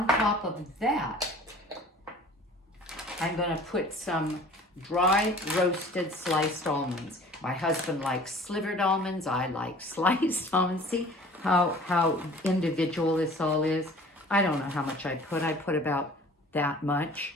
top of that, I'm going to put some dry roasted sliced almonds. My husband likes slivered almonds. I like sliced almonds. See how individual this all is? I don't know how much I put. I put about that much.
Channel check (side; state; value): both; normal; correlation 0.47